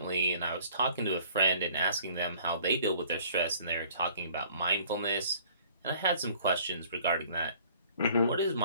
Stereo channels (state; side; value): inverted; both; correlation -0.55